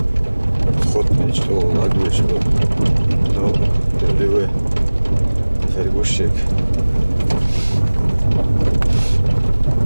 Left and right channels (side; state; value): both; inverted; correlation -1.00